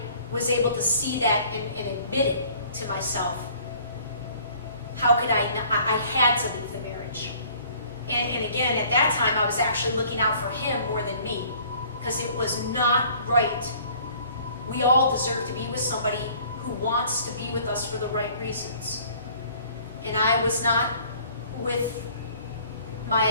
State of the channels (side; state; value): both; inverted; correlation -0.54